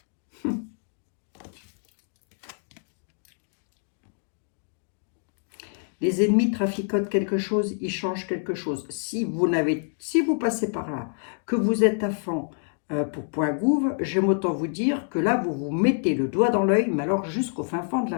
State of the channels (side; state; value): right; silent; 60 dB below the other